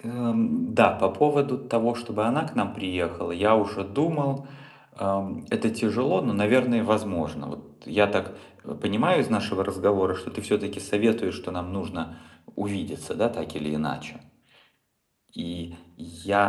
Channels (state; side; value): identical; both; correlation 1.00